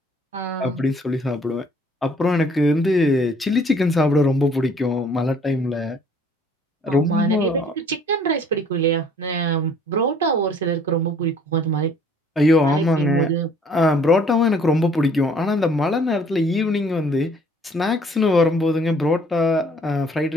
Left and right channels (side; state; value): both; normal; correlation 0.57